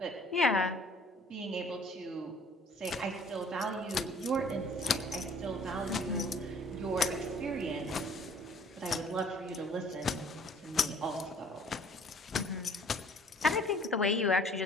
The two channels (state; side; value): normal; both; correlation 0.55